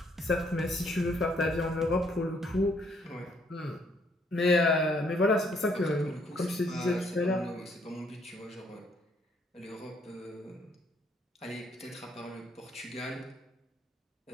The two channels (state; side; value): normal; both; correlation 0.68